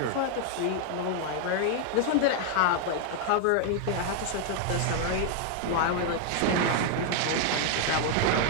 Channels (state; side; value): different; both; correlation 0.00